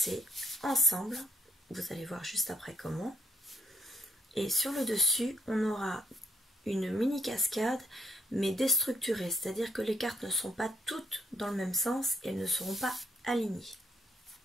ensemble. Vous allez voir juste après comment. Et sur le dessus, on aura une mini cascade, mais déstructurée. C'est-à-dire que les cartes ne sont pas toutes dans le même sens et elles ne seront pas alignées.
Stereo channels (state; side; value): normal; both; correlation 0.67